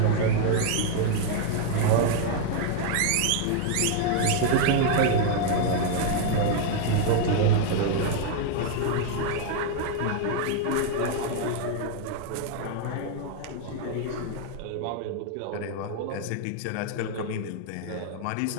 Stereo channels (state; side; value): different; both; correlation 0.00